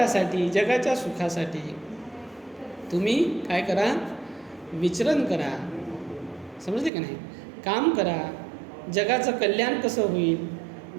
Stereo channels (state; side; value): drops out; left; at 6.9 s